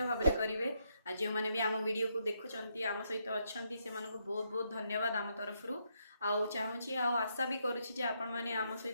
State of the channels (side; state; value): both; inverted; correlation -0.77